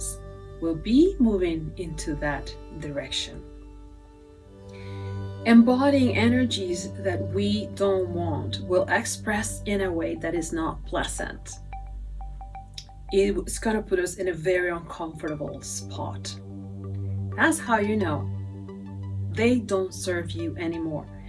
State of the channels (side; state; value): both; identical; correlation 1.00